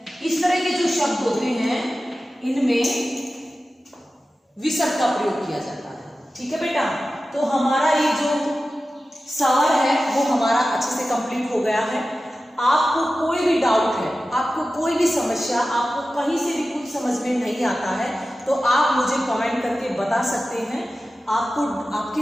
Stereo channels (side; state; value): both; normal; correlation 0.94